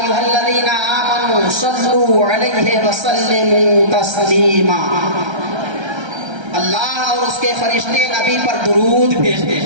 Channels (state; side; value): late; left; 1.3 ms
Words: الذین آمنوا صلوا علیہ وسلموا تسلیما۔ اللہ اور اس کے فرشتے نبی پر درود بھیجتے